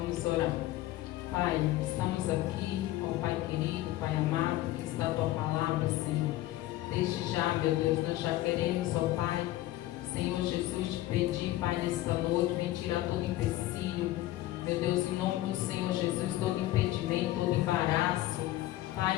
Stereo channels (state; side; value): quieter; right; 15.7 dB